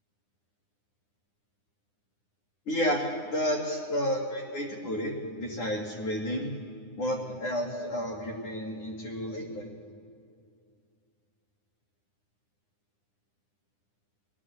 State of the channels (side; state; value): right; late; 9.8 ms